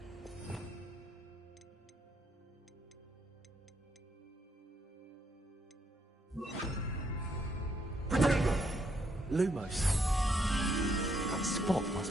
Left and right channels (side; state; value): both; normal; correlation 0.74